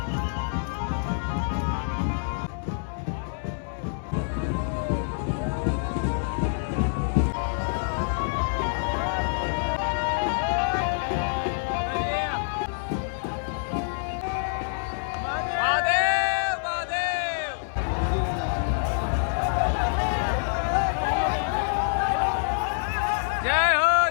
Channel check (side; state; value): right; silent; digital silence